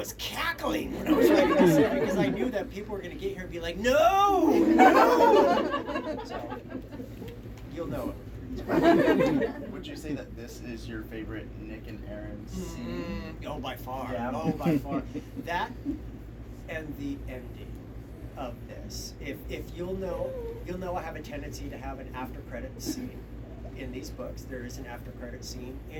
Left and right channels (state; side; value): identical; both; correlation 1.00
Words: cackling when I was writing this, because I knew that people were going to get here and be like, no! So, you'll know it. Would you say that this is your favorite Nick and Aaron scene? Oh, by far. Yeah. Oh, by far. That and the ending of this. If you'll know I have a tendency to have an after credit scene in these books. There is an after credit scene